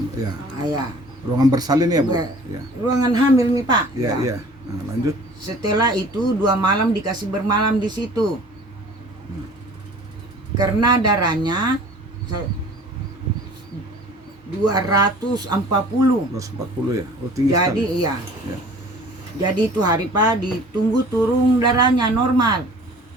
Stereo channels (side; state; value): both; normal; correlation 0.47